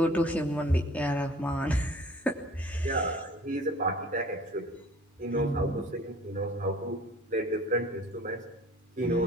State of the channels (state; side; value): normal; both; correlation 0.49